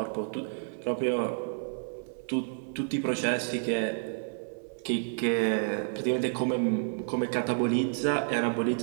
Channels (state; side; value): silent; left; 58 dB below the other